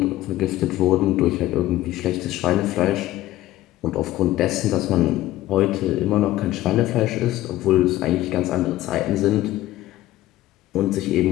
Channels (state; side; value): quieter; right; 15.4 dB